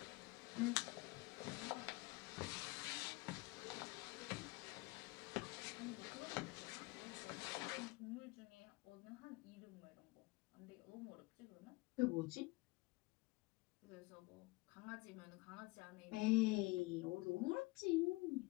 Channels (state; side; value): quieter; right; 23.3 dB